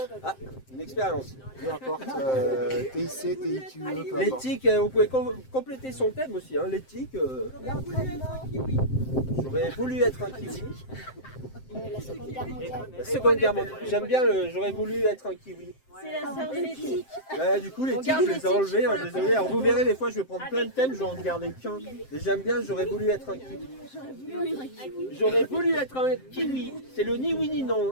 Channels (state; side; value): late; right; 7.7 ms